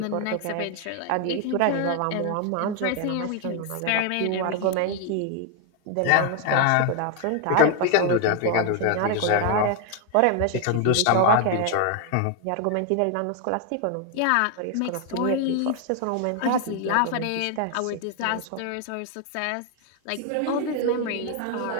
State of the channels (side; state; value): both; different; correlation 0.00